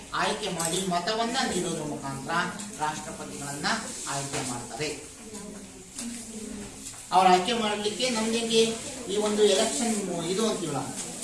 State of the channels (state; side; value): identical; both; correlation 1.00